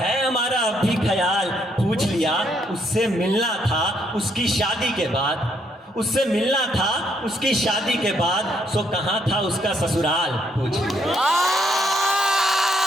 हमारा अभी ख्याल पूछ लिया। उससे मिलना था उसकी शादी के बाद, उससे मिलना था उसकी शादी के बाद, सो कहाँ था उसका ससुराल पूछ लिया।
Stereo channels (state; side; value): normal; both; correlation 0.72